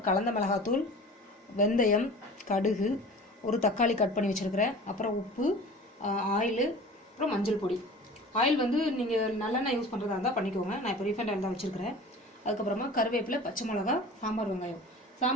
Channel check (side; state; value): both; normal; correlation 0.40